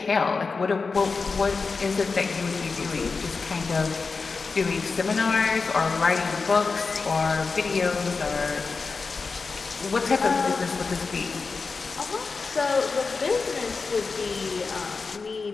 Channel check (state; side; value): quieter; right; 4.5 dB